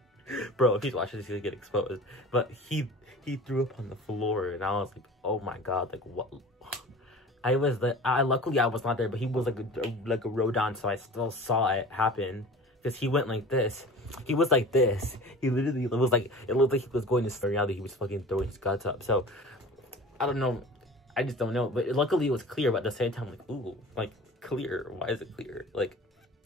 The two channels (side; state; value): both; normal; correlation 0.40